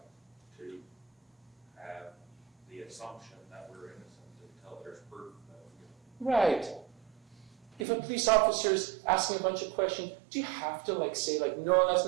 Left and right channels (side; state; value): left; drops out; at 7.9 s